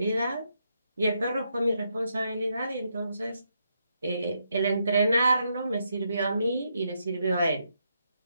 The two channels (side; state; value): both; inverted; correlation -0.80